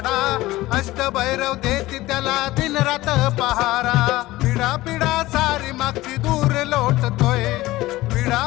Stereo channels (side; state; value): right; quieter; 17.9 dB